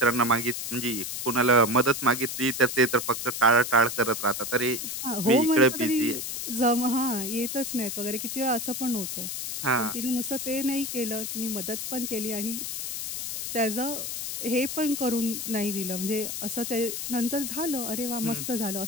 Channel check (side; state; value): left; noise; hiss, 5 dB below the sound